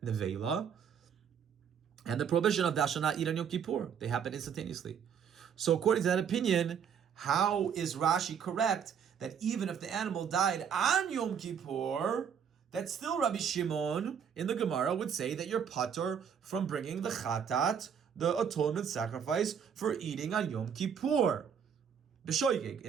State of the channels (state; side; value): quieter; left; 7.7 dB